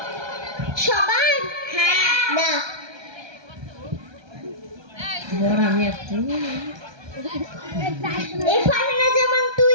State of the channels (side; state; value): left; late; 1.2 ms